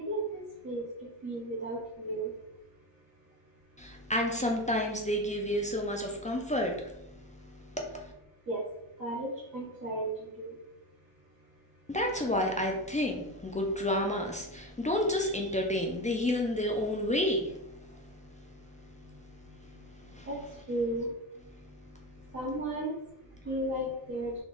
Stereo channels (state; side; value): normal; both; correlation 0.23